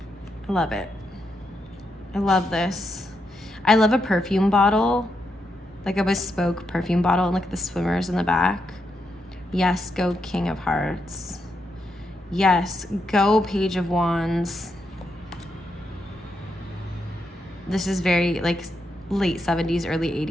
love it. I love this. I love a perfume bottle, like a bespoke perfume bottle, and look at the swimmers in the back. Yes, go King of Hearts. Yes, go Page of Wands. This is very like late 70s, early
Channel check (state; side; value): normal; both; correlation 0.82